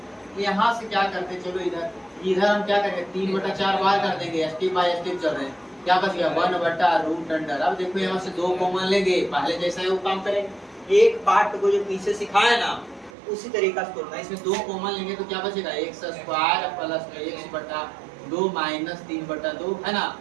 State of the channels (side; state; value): left; drops out; at 13.1 s